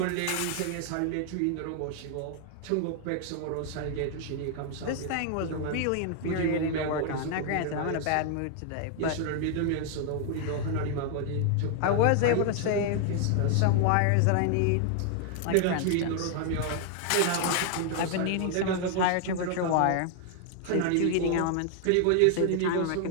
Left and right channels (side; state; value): both; different; correlation 0.00